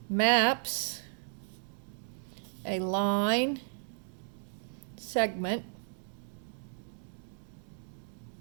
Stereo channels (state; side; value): silent; left; digital silence